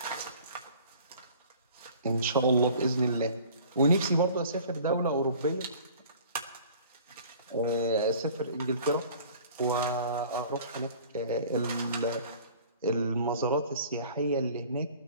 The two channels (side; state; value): both; inverted; correlation -0.48